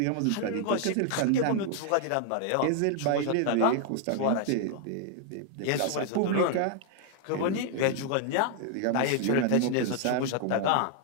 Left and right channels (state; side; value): different; both; correlation 0.00